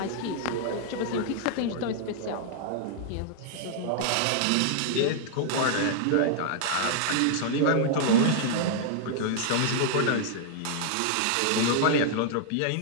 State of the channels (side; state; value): both; different; correlation -0.01